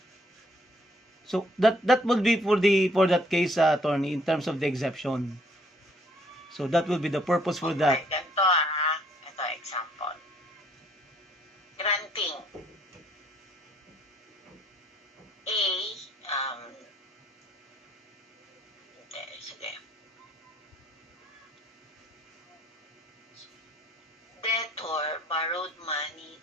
So that would be for that case, attorney, in terms of the exception. So that will be the purpose for that. Okay, ito example. Granting A, sige. Debtor borrowed money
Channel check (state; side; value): normal; both; correlation 0.64